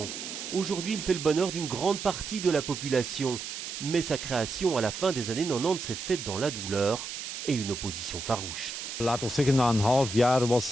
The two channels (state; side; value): noise; right; hiss, 7 dB below the sound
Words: Aujourd'hui, il fait le bonheur d'une grande partie de la population. Mais sa création à la fin des années 90 s'est faite dans la douleur et une opposition farouche.